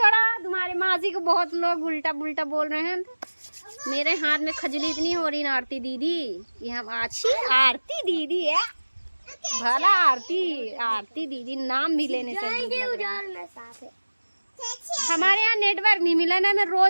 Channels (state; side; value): inverted; both; correlation -1.00